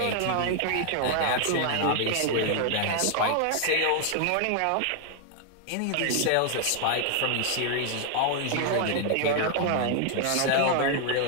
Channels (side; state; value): both; different; correlation 0.00